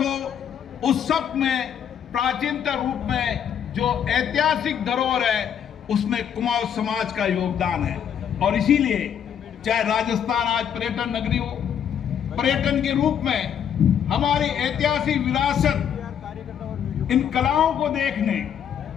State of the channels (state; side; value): quieter; right; 8.7 dB